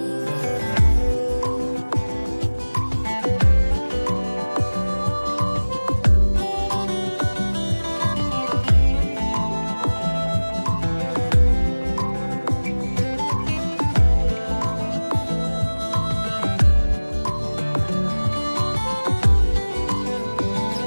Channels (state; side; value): inverted; both; correlation -1.00